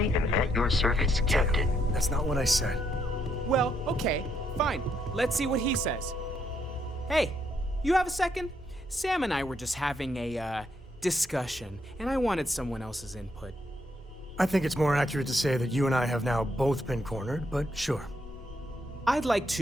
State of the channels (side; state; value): both; normal; correlation 0.75